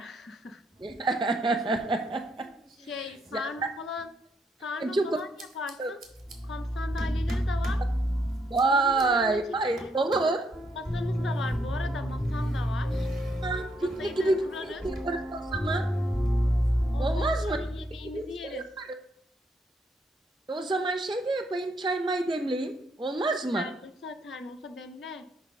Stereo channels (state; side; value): normal; both; correlation 0.75